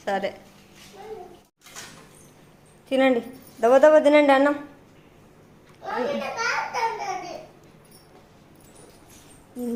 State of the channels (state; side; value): identical; both; correlation 1.00